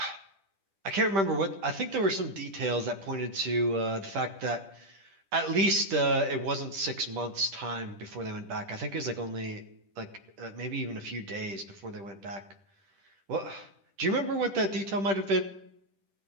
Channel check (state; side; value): late; left; 10 ms